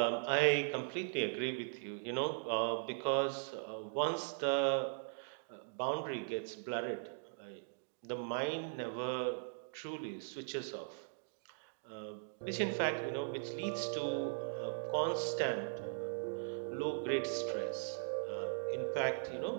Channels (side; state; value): left; silent; digital silence